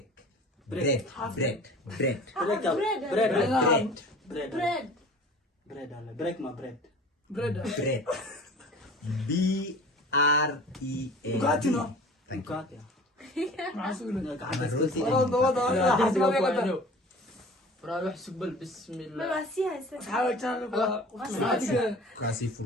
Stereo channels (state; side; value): normal; both; correlation 0.43